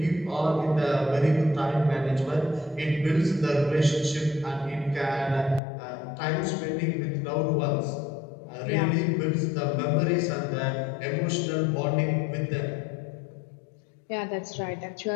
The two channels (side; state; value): right; drops out; at 5.6 s